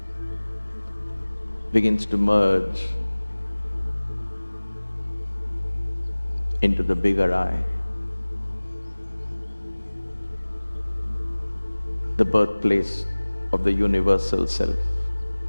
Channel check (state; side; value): inverted; both; correlation -1.00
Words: begins to merge into the bigger I. The birthplace of the universal self.